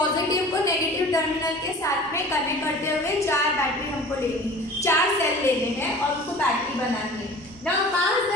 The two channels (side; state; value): both; normal; correlation 0.42